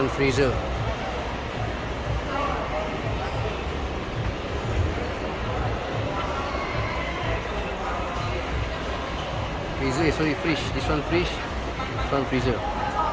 freezer. Freezer, sorry, fridge. This one fridge, this one freezer.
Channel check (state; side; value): identical; both; correlation 1.00